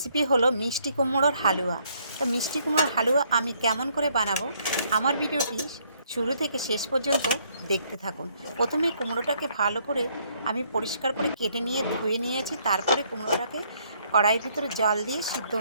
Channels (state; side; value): inverted; both; correlation -0.68